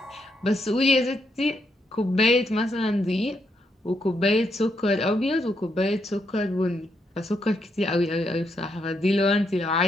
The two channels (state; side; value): normal; both; correlation 0.79